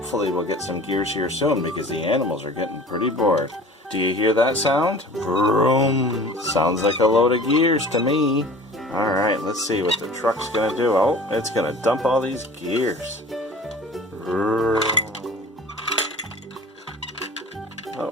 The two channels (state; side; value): normal; both; correlation 0.42